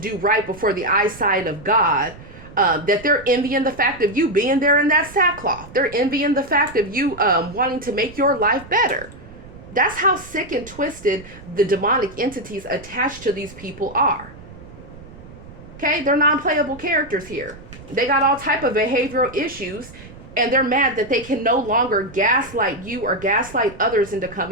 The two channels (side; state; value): right; noise; rumble, 18 dB below the sound